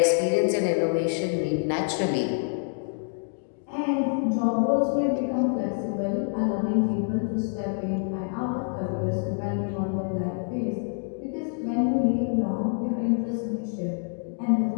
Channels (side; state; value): right; silent; 56 dB below the other